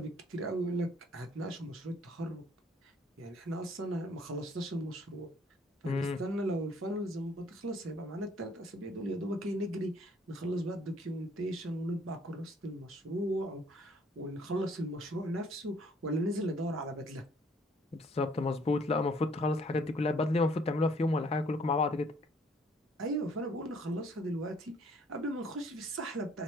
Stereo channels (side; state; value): both; normal; correlation 0.61